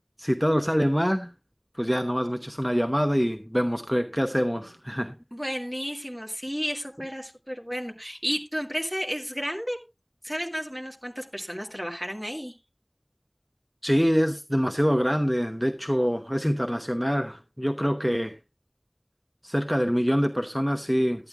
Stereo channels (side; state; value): both; identical; correlation 1.00